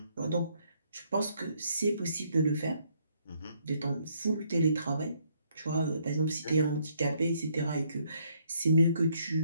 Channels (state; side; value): inverted; both; correlation -0.69